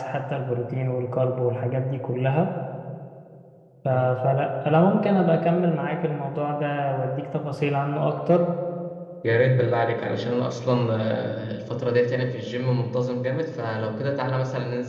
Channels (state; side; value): identical; both; correlation 1.00